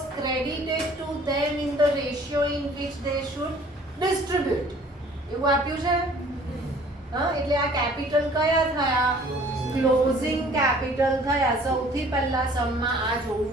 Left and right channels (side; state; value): both; normal; correlation 0.53